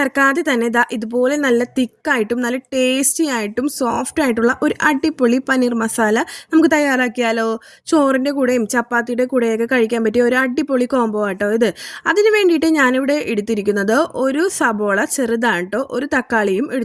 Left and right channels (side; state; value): both; identical; correlation 1.00